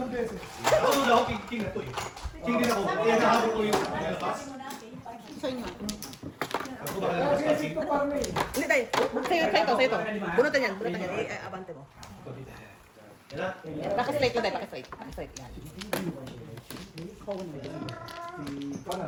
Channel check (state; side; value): identical; both; correlation 1.00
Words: beses. Ako na ako, king na to eh. King din ako. Kaya nahabol ko yung lapas. Sa inyo. Ako ba kaya lapas king? Hindi tayo. Sa'yo to. Bunutan yan. Abante mo. Paki-straight lang tayo, paki-straight. Yan.